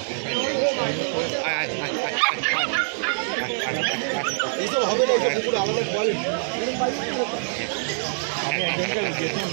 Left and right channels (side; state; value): left; silent; digital silence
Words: এইসব হবে না পুরো আলাদা কোয়ালিটি আমি একজনকে